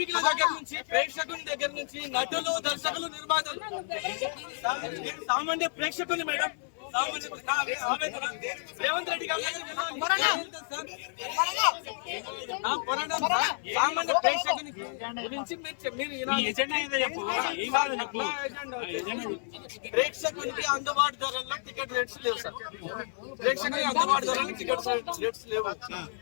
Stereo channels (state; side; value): silent; right; 57 dB below the other